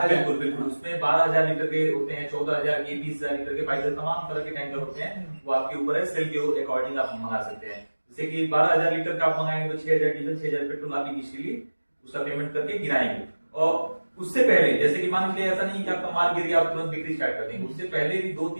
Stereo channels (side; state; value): both; inverted; correlation -1.00